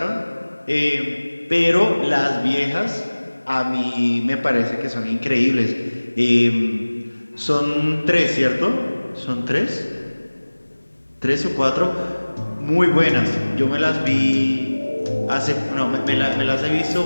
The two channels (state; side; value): inverted; both; correlation -1.00